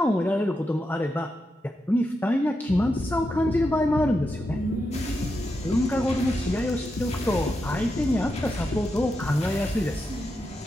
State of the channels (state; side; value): normal; both; correlation 0.86